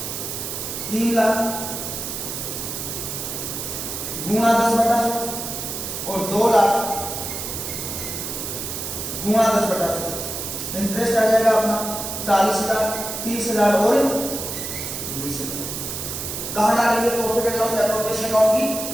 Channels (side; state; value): right; noise; hiss, 5 dB below the sound